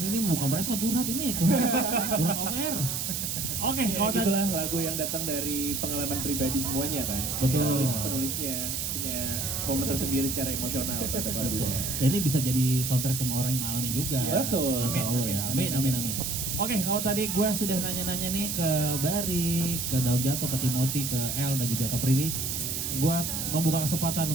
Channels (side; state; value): right; noise; hiss, 2 dB below the sound